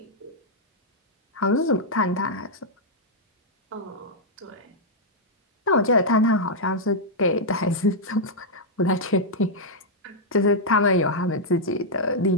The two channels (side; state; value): both; normal; correlation -0.06